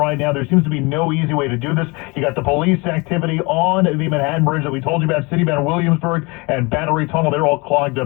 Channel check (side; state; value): right; quieter; 27.1 dB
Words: now, there seems to be no easy way to do this. You got the police activity on the Manhattan Bridge that we told you about. City bound Williamsburg and Battery Tunnel, they're all clogged